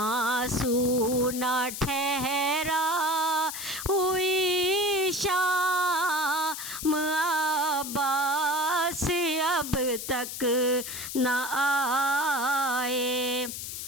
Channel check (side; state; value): left; noise; hiss, 7 dB below the sound